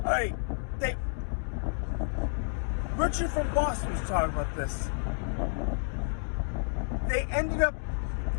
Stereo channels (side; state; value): right; silent; digital silence